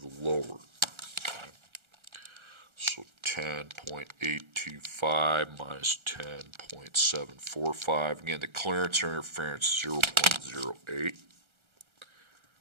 lower. Okay. So 10.825 minus 10.745. Again, the clearance or interference is 0.08.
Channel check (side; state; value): left; late; 1.4 ms